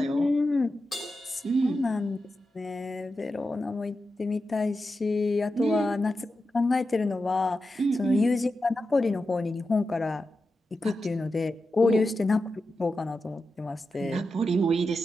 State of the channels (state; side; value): normal; both; correlation 0.90